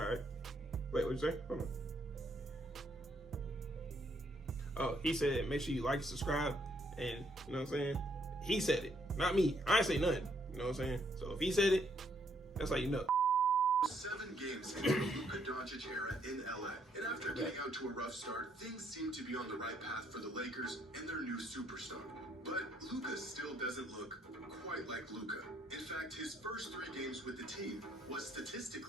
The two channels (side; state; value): both; normal; correlation 0.71